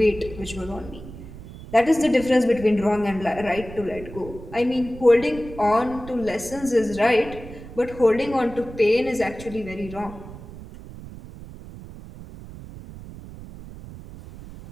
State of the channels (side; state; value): right; noise; rumble, 14 dB below the sound